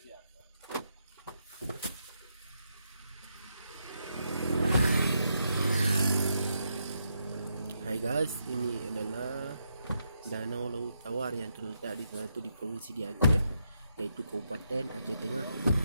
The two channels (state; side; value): inverted; both; correlation -0.81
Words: Hai guys, ini adalah Danau Laut Tawar yang terletak di salah satu di provinsi di Aceh, yaitu Kabupaten Aceh Tengah.